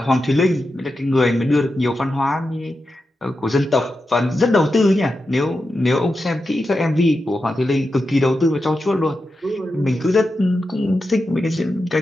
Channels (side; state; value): both; normal; correlation 0.89